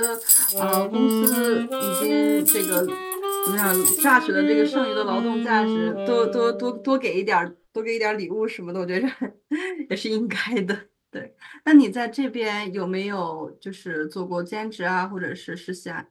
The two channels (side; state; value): both; identical; correlation 1.00